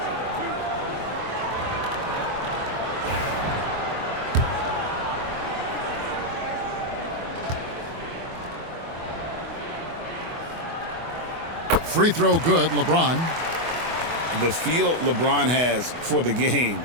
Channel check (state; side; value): late; left; 24 ms